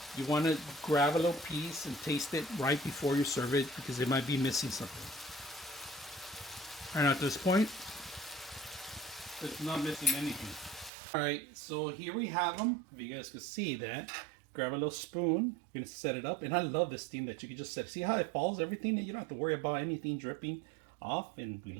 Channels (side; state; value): left; drops out; at 10.9 s